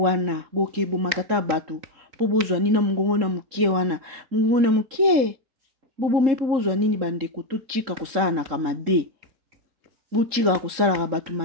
boke, bo makata batu. Po bozwa nina mungongo na mukie wana. Mungongo na mukie. Bobo me po bozwa nini bandeko to chika kusala na kamabe. Bo chika kusala ka batu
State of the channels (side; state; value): left; late; 3.7 ms